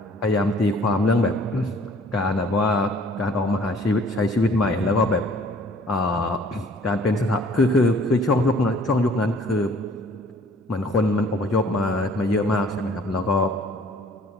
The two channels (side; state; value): both; normal; correlation 0.55